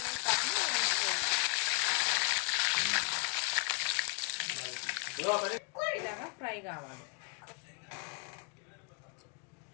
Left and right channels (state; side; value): quieter; right; 34.6 dB